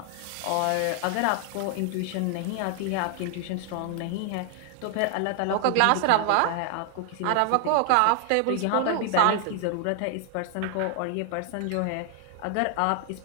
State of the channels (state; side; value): different; both; correlation 0.00